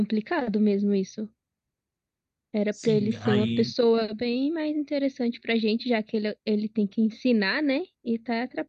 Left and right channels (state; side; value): identical; both; correlation 1.00